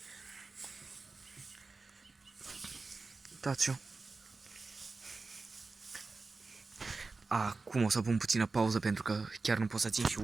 Uitați-o. Acum o să pun puțină pauză pentru că chiar nu pot să țin și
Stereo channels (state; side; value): quieter; left; 3.9 dB